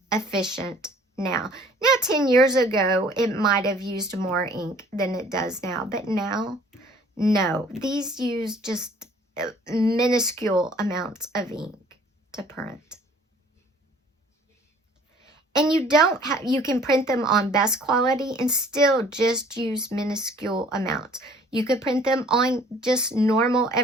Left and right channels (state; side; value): normal; both; correlation 0.54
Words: efficient now. Now, 10 years ago, it might have used more ink than it does now, but now, no. These use just minuscule amounts of ink to print. And you can print them on best quality and still just use minuscule amounts. You could print them on just normal